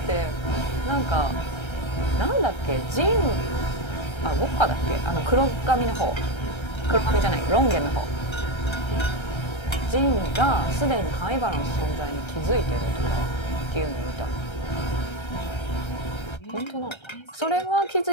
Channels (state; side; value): late; right; 1.3 ms